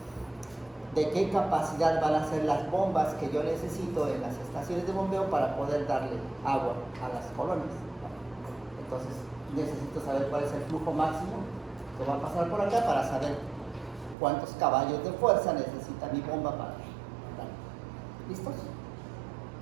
de qué capacidad van a ser las bombas que yo necesito en las estaciones de bombeo para poder darle agua a las colonias. Entonces necesito saber cuál es el flujo máximo que va a pasar por acá para saber cuántos caballos de fuerza necesita mi bomba para dar. ¿Listos?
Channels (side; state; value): left; drops out; at 14.2 s